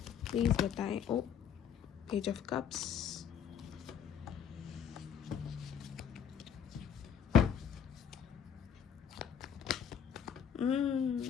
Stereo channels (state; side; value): quieter; right; 8.1 dB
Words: please बताएं। Oh, page of cups,